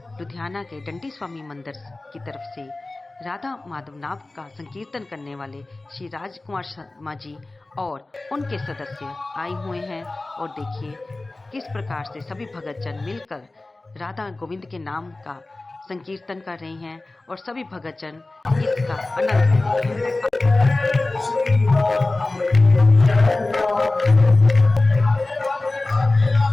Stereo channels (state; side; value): quieter; right; 3.0 dB